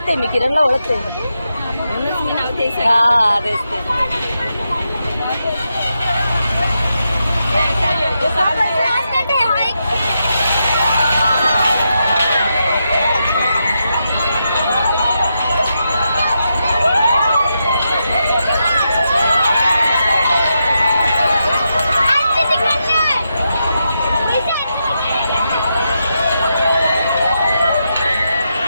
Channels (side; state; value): both; inverted; correlation -0.85